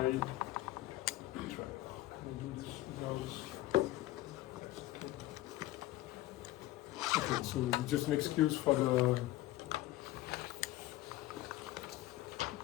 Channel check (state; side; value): quieter; right; 16.5 dB